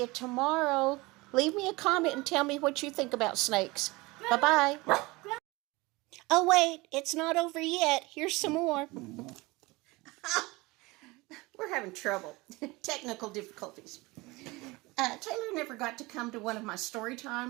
tomorrow. Leave me a comment and tell me what you think about snakes. Bye-bye. Oh, wait, it's not over yet. Here's some more. We're having trouble. Technical difficulties. Taylor never got to come to one of my story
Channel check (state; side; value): quieter; left; 22.9 dB